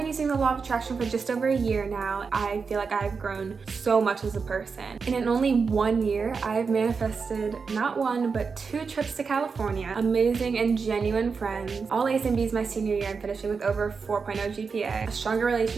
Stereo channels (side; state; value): left; quieter; 5.2 dB